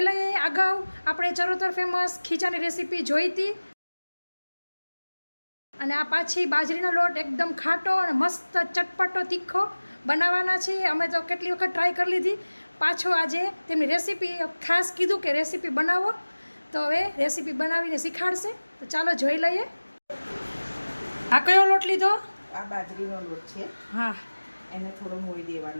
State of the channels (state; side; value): inverted; both; correlation -1.00